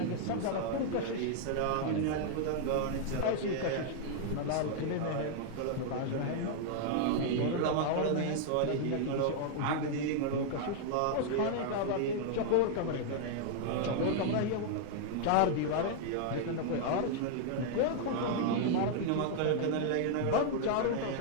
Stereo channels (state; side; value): different; both; correlation 0.00